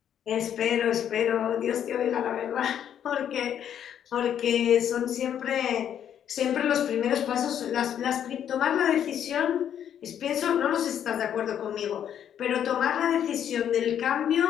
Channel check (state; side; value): quieter; right; 9.5 dB